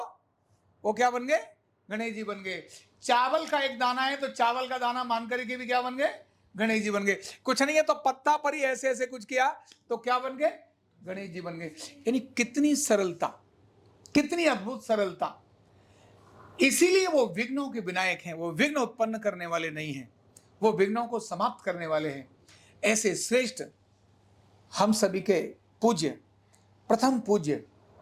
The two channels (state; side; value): identical; both; correlation 1.00